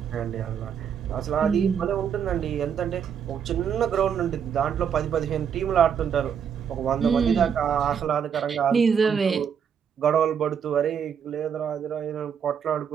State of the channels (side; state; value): left; quieter; 7.7 dB